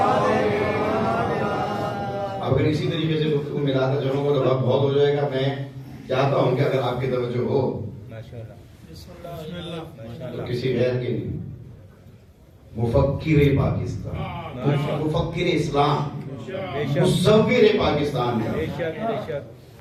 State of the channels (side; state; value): both; identical; correlation 1.00